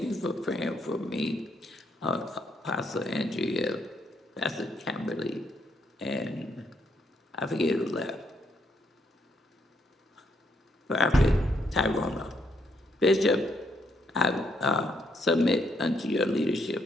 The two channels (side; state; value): both; normal; correlation 0.74